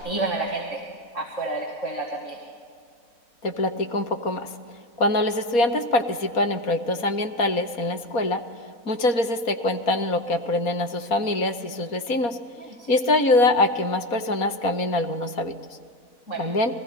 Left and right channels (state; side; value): late; right; 4.2 ms